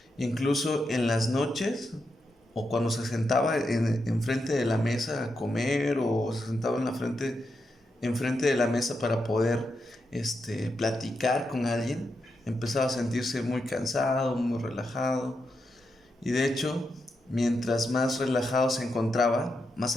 Incluso en las noches o cuando se sentaba enfrente de la mesa a comer o se sentaba enfrente de la mesa para poder platicar con alguien, empezaba a sentirse muy cansado, muy relajado. Y de hecho, mientras más relajado se encontraba, más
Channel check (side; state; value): both; normal; correlation 0.85